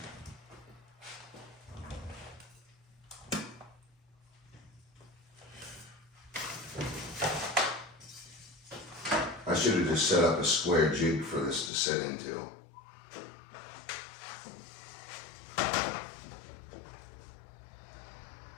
I should have just set up a square jig for this to set into.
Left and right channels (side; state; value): right; drops out; at 11.7 s